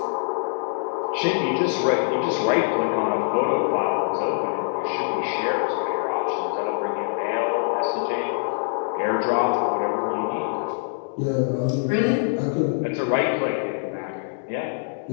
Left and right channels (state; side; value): silent; right; digital silence